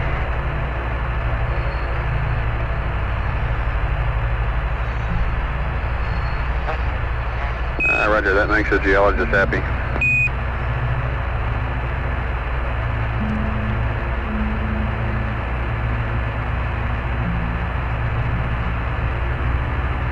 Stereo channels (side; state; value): both; identical; correlation 1.00